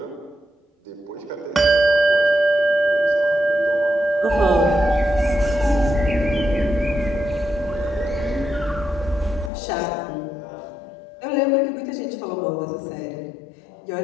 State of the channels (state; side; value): drops out; right; at 9.5 s